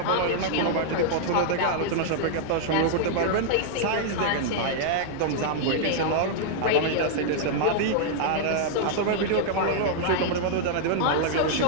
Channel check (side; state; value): both; different; correlation -0.01